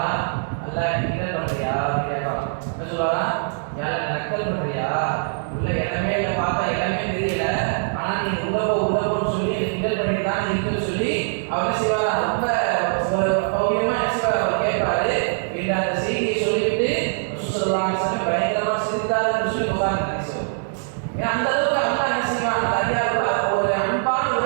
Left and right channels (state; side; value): silent; left; digital silence